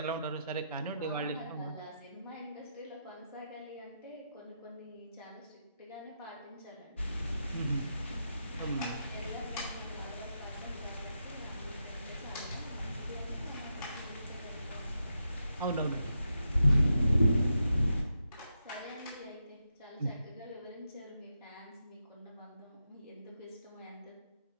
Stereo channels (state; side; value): inverted; both; correlation -0.85